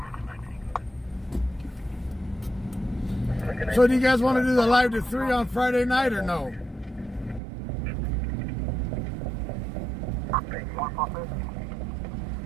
So do you guys want to do the live to 3 on Friday night or no?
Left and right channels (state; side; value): drops out; left; at 7.4 s